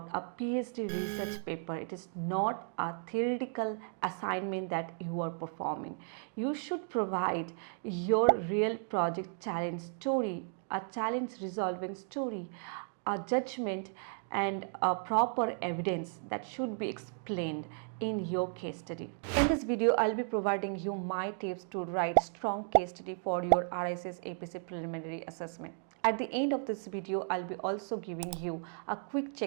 a PhD research paper. It is not a theoretical assignment that you are performing. You should provide your real project challenge story, a challenge resolving story, a judgment and a proper evidence that should be explained in your case study. In this video, I'll be providing you my tips to write strong case study for your RICS APC Preliminary Assessment. At the end of this video, I'll be also giving you a quick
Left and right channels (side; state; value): left; silent; 55 dB below the other